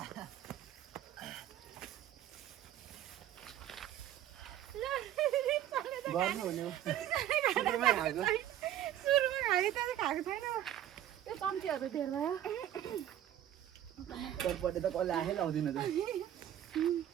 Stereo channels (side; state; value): left; quieter; 11.7 dB